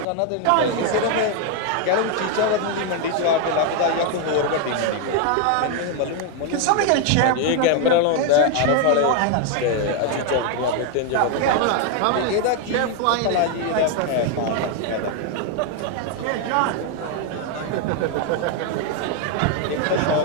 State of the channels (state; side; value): different; both; correlation 0.01